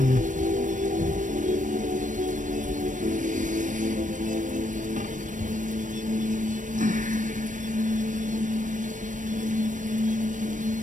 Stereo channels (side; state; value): left; late; 0.37 ms